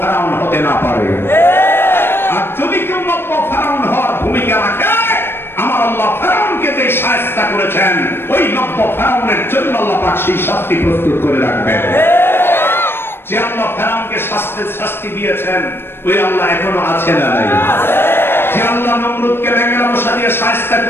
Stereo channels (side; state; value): right; late; 0.11 ms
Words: হতে না পারে। আর যদি কেউ নব্য ফেরাউন হওয়ার ভূমিকা রাখে, আমার আল্লাহ ফেরাউনকে যে শায়েস্তা করেছেন, ওই নব্য ফেরাউনের জন্য আল্লাহ পাক সেই শাস্তি প্রস্তুত করে রাখবেন। যে আল্লাহ ফেরাউনকে শাস্তি দিয়েছেন, ওই আল্লাহ এখনো আছে না নাই? যে আল্লাহ নমরুদকে ব্যাঙের মশা দিয়ে শায়েস্তা